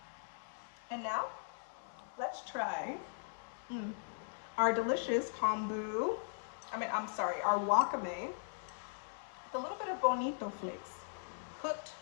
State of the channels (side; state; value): right; silent; digital silence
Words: And now let's try our delicious kombu. Our wakame with a little bit of bonito flakes, cooked,